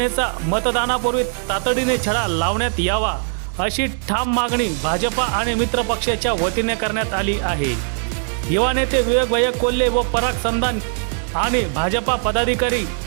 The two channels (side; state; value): left; silent; 64 dB below the other